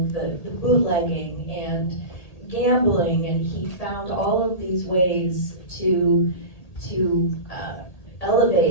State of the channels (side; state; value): right; late; 1.8 ms